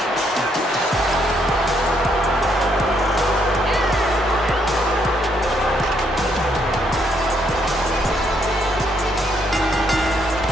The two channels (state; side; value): normal; both; correlation 0.73